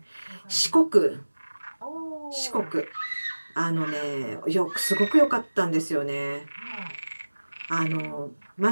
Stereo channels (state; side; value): inverted; both; correlation -1.00